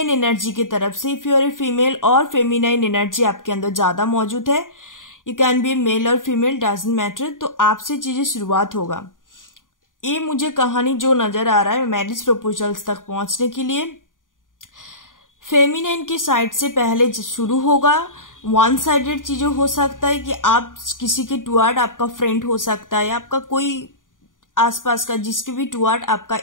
एनर्जी की तरफ से, if you are a female और फेमिनाइन एनर्जी आपके अंदर ज्यादा मौजूद है, यू कैन बी मेल और फीमेल, डजंट मैटर, तो आपसे चीजें शुरुआत होगा। ये मुझे कहानी जो नजर आ रहा है मैरिज प्रपोजल्स तक पहुंचने के लिए फेमिनाइन की साइड से पहले शुरू होगा। 1 साइडेड चीजें हो सकता है कि आप किसी के टुवर्ड, आपका फ्रेंड हो सकता है, आपका कोई आसपास का जिसके भी टुवर्ड आपका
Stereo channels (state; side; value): late; right; 0.89 ms